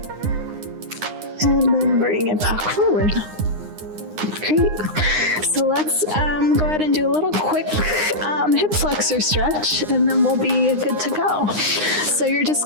And then bring it back forward. Great. So let's go ahead and do a little quick hip flexor stretch, and then we'll be good to go. So you're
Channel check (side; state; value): left; late; 9.7 ms